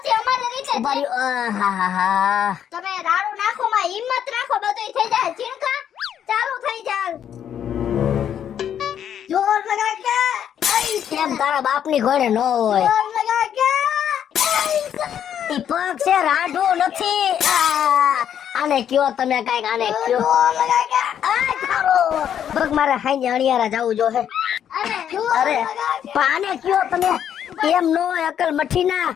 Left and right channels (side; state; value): right; quieter; 9.3 dB